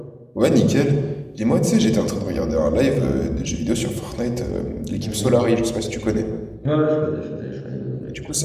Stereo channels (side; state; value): both; identical; correlation 1.00